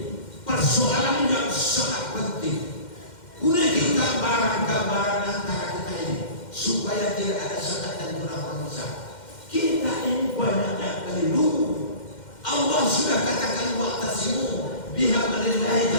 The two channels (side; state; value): right; late; 2.1 ms